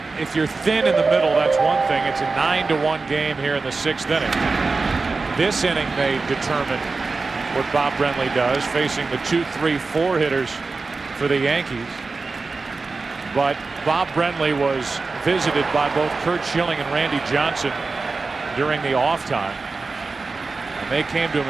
If you're thin in the middle, that's one thing. It's a 9-1 game here in the sixth inning. This inning may determine what Bob Brenly does, facing the 2, 3, 4 hitters for the Yankees. But Bob Brenly was visited by both Curt Schilling and Randy Johnson during the off time. And they came to him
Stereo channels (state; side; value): quieter; left; 4.0 dB